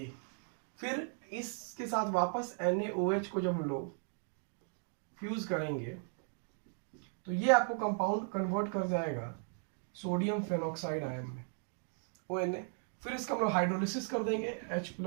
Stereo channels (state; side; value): silent; left; 53 dB below the other